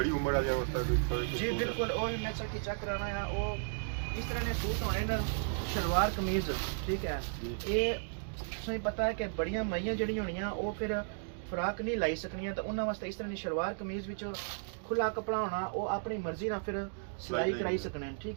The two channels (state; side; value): silent; left; digital silence